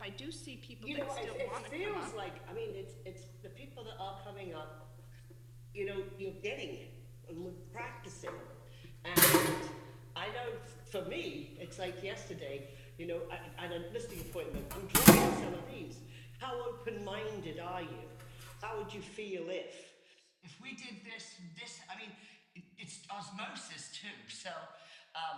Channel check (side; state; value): both; identical; correlation 1.00